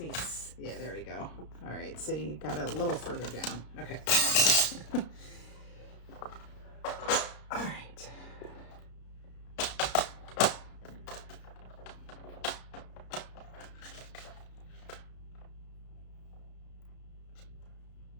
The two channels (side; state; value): right; late; 33 ms